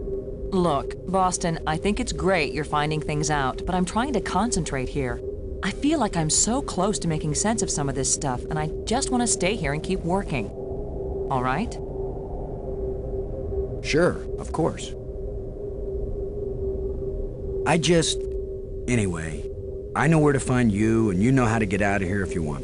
Look, Boston, I think it's great you're finding things out, but I'm trying to concentrate here. I feel like I'm so close to making sense of some of this stuff, and I just want to stay here and keep working. All right? Sure, of course. Anyway, I know where to find you, and you know how to get out of here if you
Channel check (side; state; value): both; identical; correlation 1.00